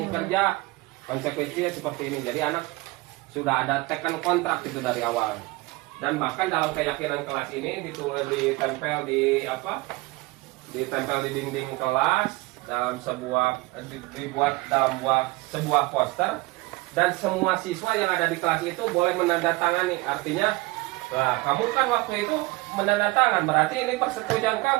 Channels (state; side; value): quieter; left; 22.6 dB